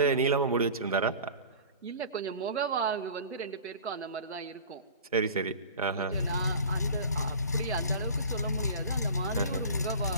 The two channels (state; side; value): inverted; both; correlation -0.39